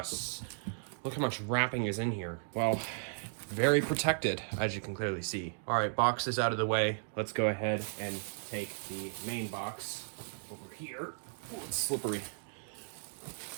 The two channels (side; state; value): left; silent; digital silence